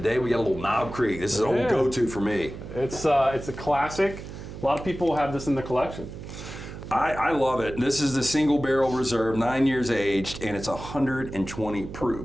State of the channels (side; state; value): right; noise; hum, 11 dB below the sound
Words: we got a little Knob Creek. This is an old go-to for me. It's a classic. A lot of people have this in the collection. I love it. This is the single barrel reserve, 9 years aged, and it's 120